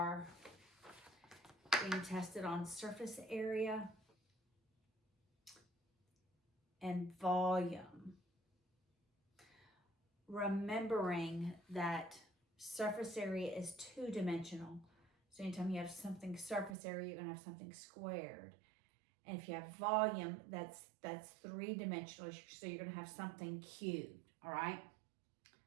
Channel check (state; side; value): drops out; left; at 16.8 s